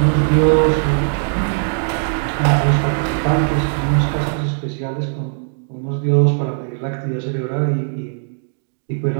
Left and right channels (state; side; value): silent; left; digital silence